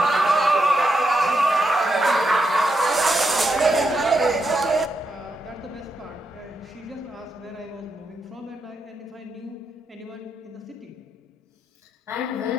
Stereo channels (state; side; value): normal; both; correlation 0.83